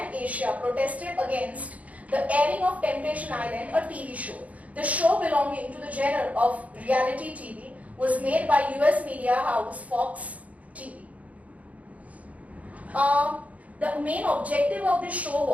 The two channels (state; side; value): late; left; 0.069 ms